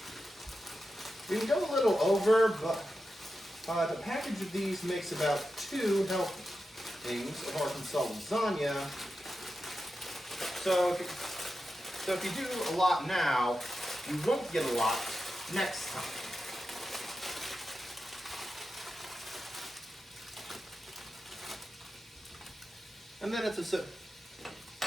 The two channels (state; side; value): normal; both; correlation 0.90